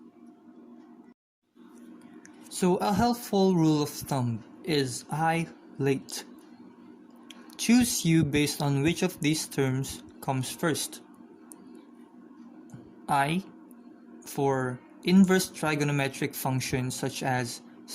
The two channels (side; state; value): both; identical; correlation 1.00